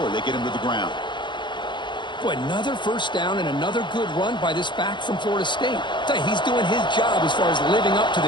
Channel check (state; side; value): late; right; 0.22 ms